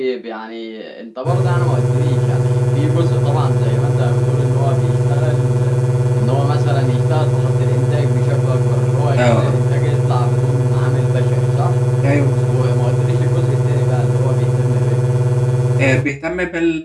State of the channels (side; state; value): both; identical; correlation 1.00